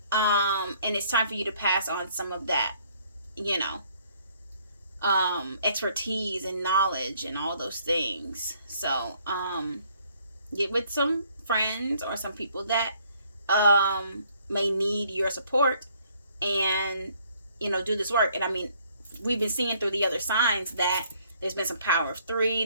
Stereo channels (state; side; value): inverted; both; correlation -0.64